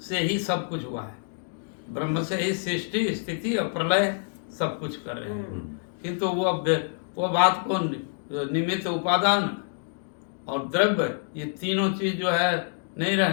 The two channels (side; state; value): right; silent; digital silence